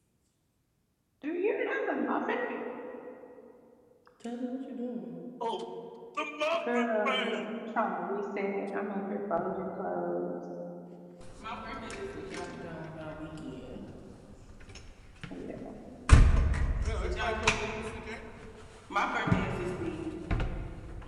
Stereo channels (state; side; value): identical; both; correlation 1.00